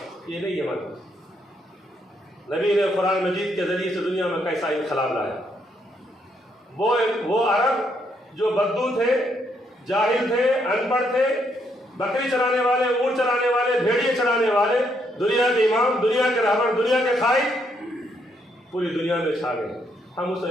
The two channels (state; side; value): normal; both; correlation 0.74